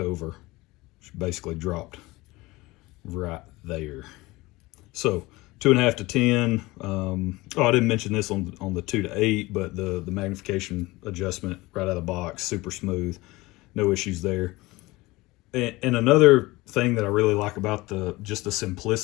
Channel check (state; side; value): quieter; right; 21.0 dB